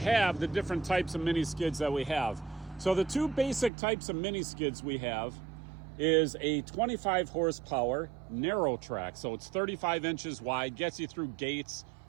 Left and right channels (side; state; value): left; drops out; at 3.7 s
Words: the different types of mini skids that we have. So the two basic types of mini skids we have is a 25 horsepower narrow track. So it's 35 inches wide, gets you through gates